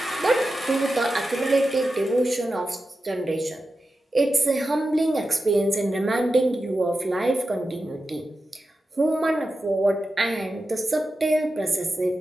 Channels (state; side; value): normal; both; correlation 0.91